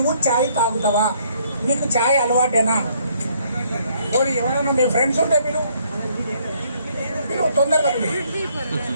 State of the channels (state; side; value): inverted; both; correlation -0.66